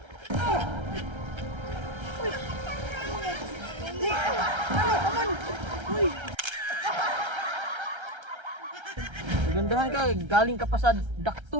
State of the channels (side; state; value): left; late; 1.3 ms